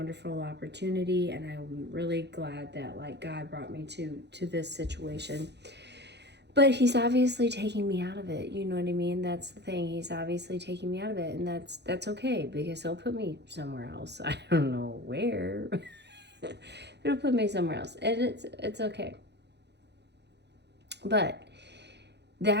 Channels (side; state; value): left; late; 0.50 ms